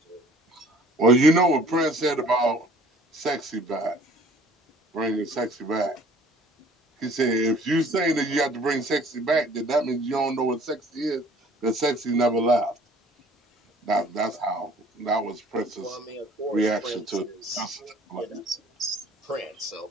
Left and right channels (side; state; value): both; normal; correlation 0.53